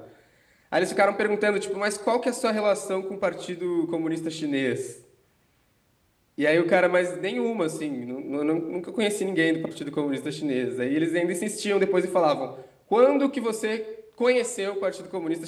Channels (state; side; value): identical; both; correlation 1.00